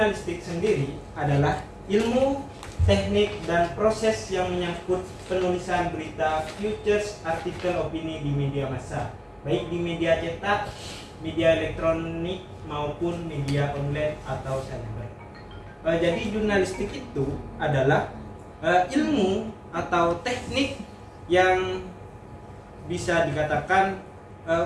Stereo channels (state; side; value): identical; both; correlation 1.00